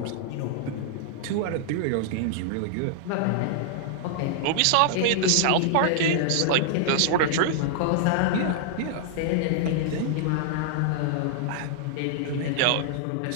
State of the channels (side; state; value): both; different; correlation -0.01